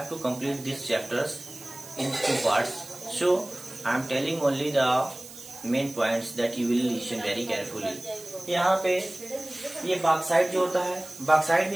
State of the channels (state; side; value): noise; right; hiss, 16 dB below the sound